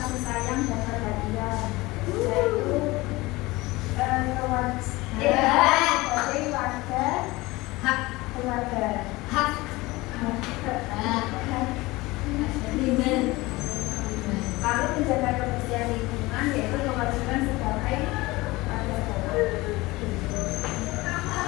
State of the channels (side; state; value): right; quieter; 21.1 dB